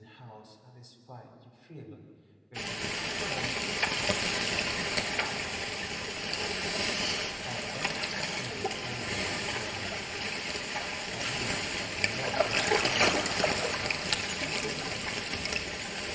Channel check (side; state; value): both; identical; correlation 1.00